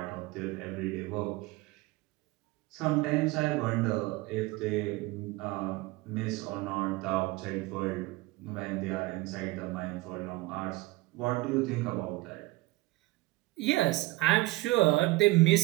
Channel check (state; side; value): quieter; left; 20.8 dB